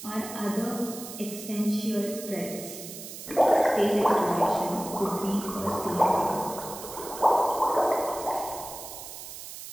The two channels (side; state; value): right; noise; hiss, 11 dB below the sound